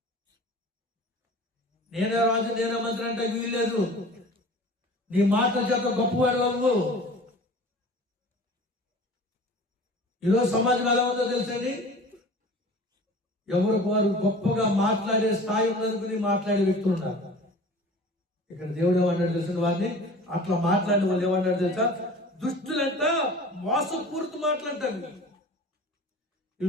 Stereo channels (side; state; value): both; normal; correlation 0.42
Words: నేనే రాజు, నేనే మంత్రి అంటే వీల్లేదు. నీ మాటల చేత గొప్పవాడు బాబు. ఈరోజు సమాజం ఎలా ఉందో తెలుసండి? ఎవరు వారు గొప్పగా మాట్లాడే స్థాయి ఉన్నందుకుని మాట్లాడే వ్యక్తులు ఉన్నారు. ఇక్కడ దేవుడు ఏమన్నాడు తెలిసిన వారిని అట్లా మాట్లాడిన వాళ్ళు ఏమన్నాడు తెలుసా? దుష్టులంట మోసపూరిత మాట్లాడతారు. ఈ